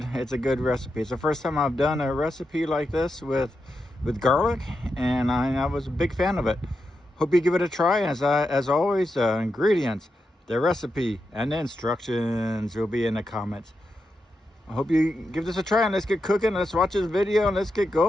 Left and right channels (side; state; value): both; normal; correlation 0.87